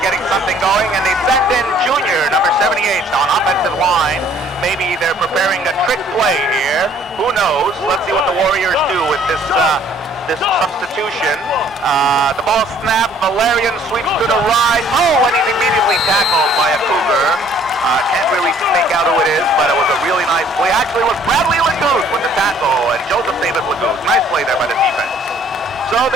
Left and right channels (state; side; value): normal; both; correlation 0.59